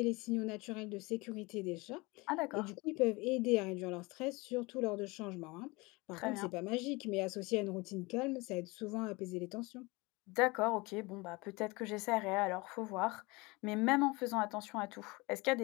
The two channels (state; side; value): quieter; right; 24.7 dB